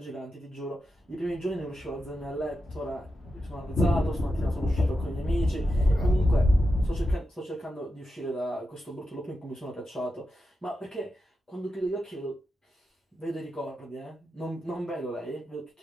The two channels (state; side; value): normal; both; correlation 0.89